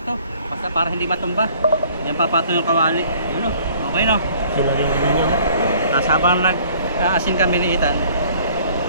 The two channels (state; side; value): inverted; both; correlation -0.55